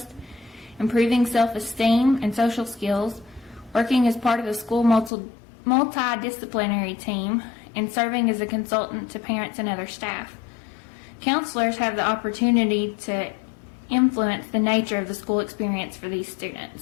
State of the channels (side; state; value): right; drops out; at 5.1 s